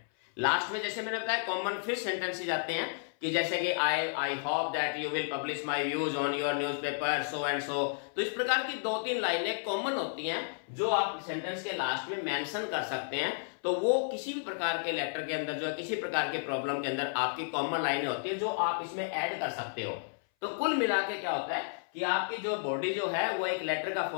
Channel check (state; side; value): silent; right; 56 dB below the other